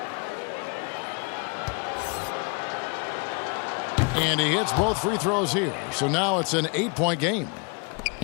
And he hits both free throws here. So now it's an 8-point game.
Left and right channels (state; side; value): quieter; right; 33.4 dB